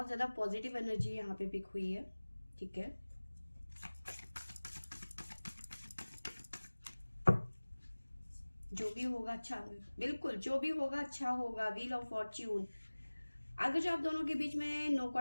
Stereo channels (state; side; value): inverted; both; correlation -1.00